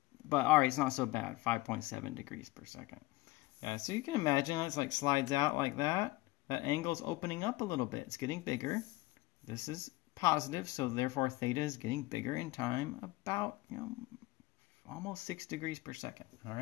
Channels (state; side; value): quieter; right; 19.8 dB